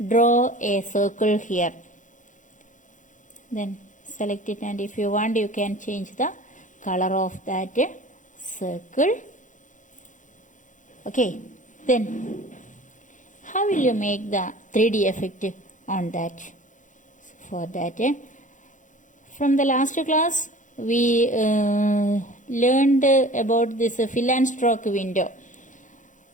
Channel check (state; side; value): late; right; 0.37 ms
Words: draw a circle here. Then select it, and if you want you can change the color of that circle. Okay, then how will you make the 3D effect on that? For that, from the last class we learned about this fill and stroke window.